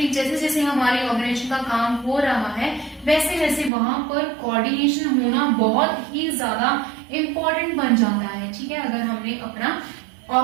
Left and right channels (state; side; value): drops out; left; at 3.7 s